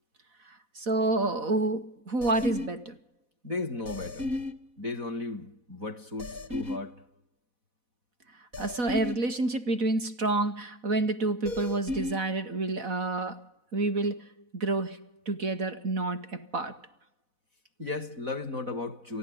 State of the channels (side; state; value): left; late; 4.1 ms